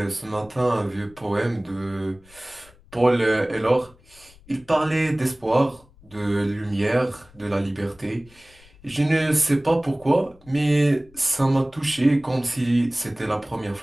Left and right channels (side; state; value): left; noise; rumble, 26 dB below the sound